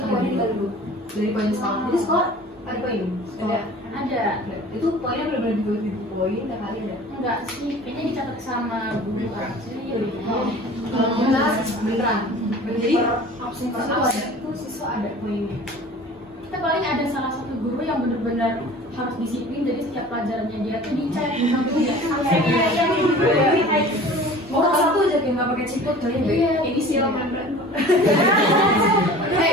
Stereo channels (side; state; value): both; normal; correlation 0.43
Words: poinnya dikali dulu. Dari poin sekolah. Jadi sekolah ada poin? Ada. Ada. Itu poinnya benar-benar dibagi poin, tiap hari ada. Enggak sih, kayaknya dicatat sama guru kan. Jadi Kalau kita beneran. Jadi Absen per absen itu siswa ada poinnya. kita paling ada salah satu guru yang benar-benar harus disiplin, jadi setiap pelajarannya dia tuh dicek absennya. mau satu aja kayak nggak pakai ciput kali ya. Iya, Ini silau membrane.